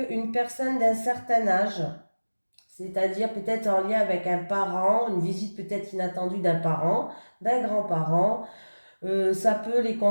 une personne d'un certain âge, c'est-à-dire peut-être en lien avec un parent, une visite peut-être inattendue d'un parent, d'un grand-parent. Ça peut les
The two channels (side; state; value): both; inverted; correlation -1.00